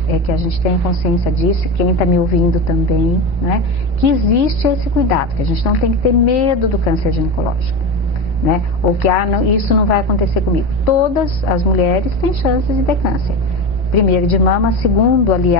é que a gente tenha consciência disso, quem está me ouvindo também, né? Que existe esse cuidado, que a gente não tem que ter medo do câncer ginecológico, né? Ou que isso não vai acontecer comigo. Todas as mulheres têm chances de ter câncer. Primeiro de mama, segundo,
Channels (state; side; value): normal; both; correlation 0.22